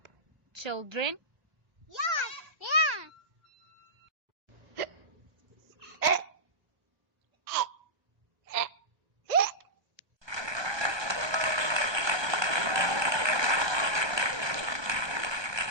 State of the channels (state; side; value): late; left; 1.2 ms